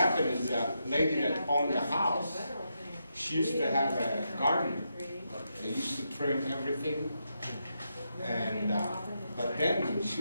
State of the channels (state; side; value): inverted; both; correlation -0.83